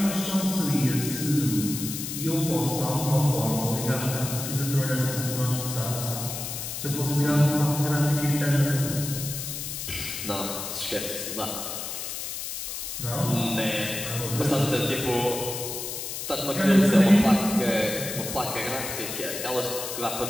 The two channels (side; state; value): left; noise; hiss, 6 dB below the sound